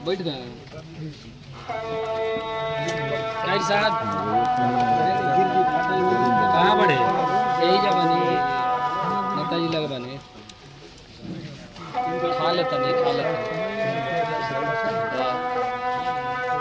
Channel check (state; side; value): identical; both; correlation 1.00